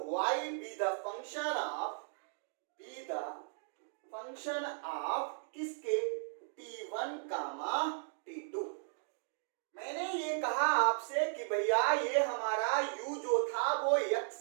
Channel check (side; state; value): left; silent; digital silence